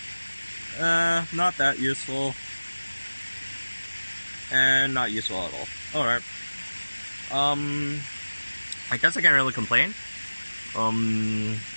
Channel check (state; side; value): inverted; both; correlation -1.00